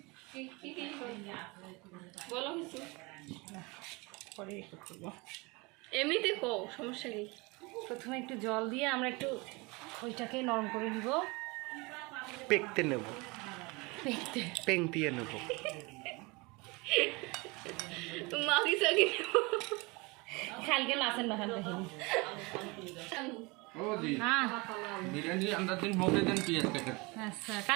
বলো কিছু পরে করবো এমনিতে কো সমস্যা কি প্রথমে একটু জল দিয়ে আমরা একটু খইটাকে নরম করে নিব পেকতে নেব পেংটিয়ে নেব মাগি সাগি কালকে মাছের মাখান দেখিনি हाँ बिरयानी अंदर दिन भोगे दिन पियाज काट अच्छा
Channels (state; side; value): quieter; left; 26.3 dB